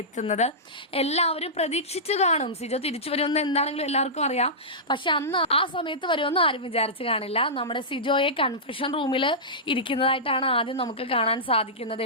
എത്തുന്നത്. എല്ലാവരും പ്രതീക്ഷിച്ചു കാണും സിജോ തിരിച്ചു വരുമെന്ന്. എന്താണെങ്കിലും എല്ലാവർക്കും അറിയാം. പക്ഷെ അന്ന് ആ സമയത്ത് വരുമെന്ന് ആരും വിചാരിച്ചു കാണില്ല. നമ്മുടെ സിജോയെ കൺഫെഷൻ റൂമിൽ ഇരിക്കുന്നതായിട്ടാണ് ആദ്യം നമുക്ക് കാണാൻ സാധിക്കുന്നത്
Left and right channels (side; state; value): both; normal; correlation -0.15